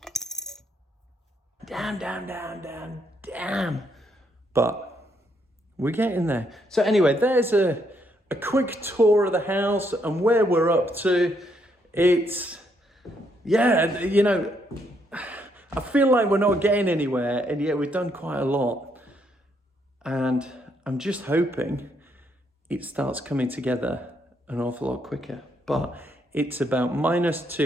But we're getting there. So anyway, there's a quick tour of the house and where we're up to. It's, yeah, you know, I feel like we're not getting anywhere, and yet we've done quite a lot. And I'm just hoping it starts coming together an awful lot quicker. But it's about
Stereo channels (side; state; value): both; normal; correlation 0.74